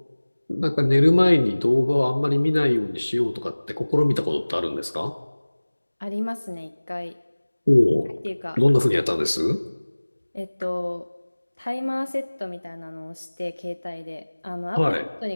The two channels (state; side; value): inverted; both; correlation -1.00